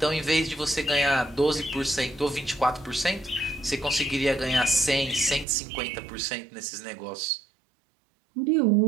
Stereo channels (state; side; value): drops out; left; at 5.5 s